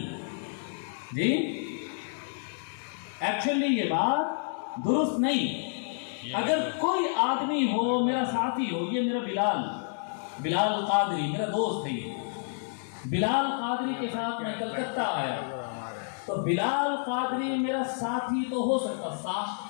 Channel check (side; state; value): right; silent; digital silence